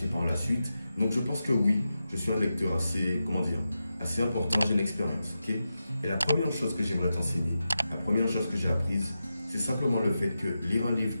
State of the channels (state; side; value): inverted; both; correlation -0.91